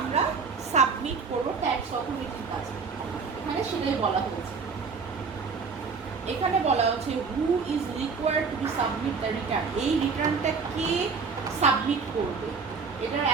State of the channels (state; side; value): quieter; left; 5.2 dB